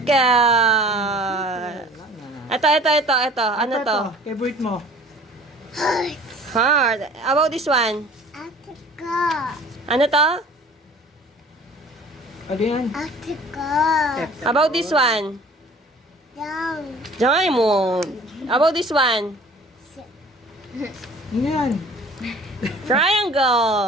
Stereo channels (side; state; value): both; normal; correlation 0.49